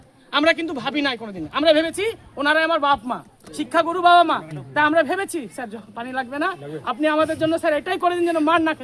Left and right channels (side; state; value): both; identical; correlation 1.00